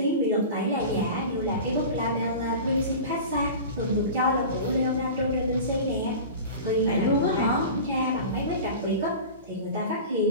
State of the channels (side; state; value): both; inverted; correlation -0.34